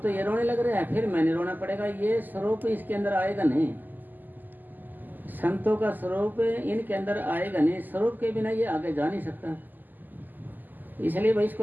तो ये रोने लग रहा है, फिर मैंने रोना पड़ेगा। ये स्वरूप इसके अंदर आएगा नहीं, संतों का स्वरूप इनके अंदर आएगा नहीं। स्वरूप के बिना ये आगे जा नहीं सकता, इसलिए भाई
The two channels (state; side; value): late; left; 0.087 ms